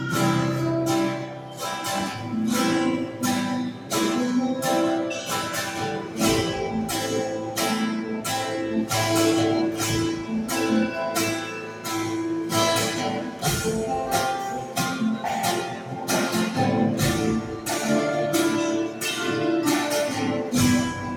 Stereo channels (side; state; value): both; identical; correlation 1.00